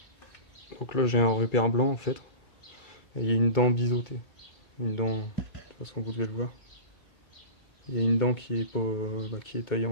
Donc là, j'ai un repère blanc en fait. Et il y a une dent biseautée. Une dent, de toute façon, vous devez le voir. Il y a une dent qui est pas, qui est taillée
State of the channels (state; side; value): late; right; 2.3 ms